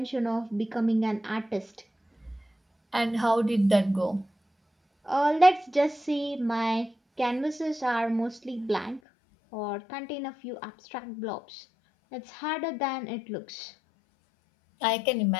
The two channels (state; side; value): drops out; right; at 9.0 s